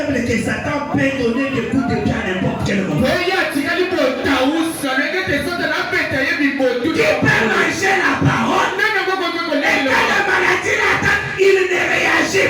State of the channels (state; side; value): identical; both; correlation 1.00